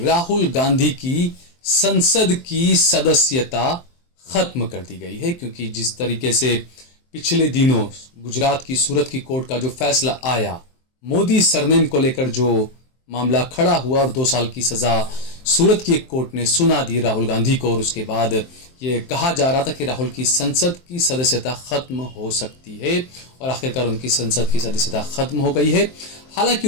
राहुल गांधी की संसद की सदस्यता खत्म कर दी गई है, क्योंकि जिस तरीके से पिछले दिनों गुजरात की सूरत की कोर्ट का जो फैसला आया, मोदी सरनेम को लेकर जो मामला खड़ा हुआ और 2 साल की सजा सूरत की एक कोर्ट ने सुना दी राहुल गांधी को, और उसके बाद ये कहा जा रहा था कि राहुल की संसद की सदस्यता खत्म हो सकती है, और आखिरकार उनकी संसद की सदस्यता खत्म हो गई है। हालांकि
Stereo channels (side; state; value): right; late; 23 ms